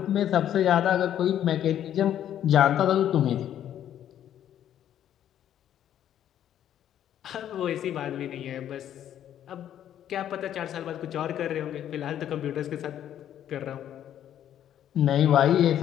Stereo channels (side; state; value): right; quieter; 10.7 dB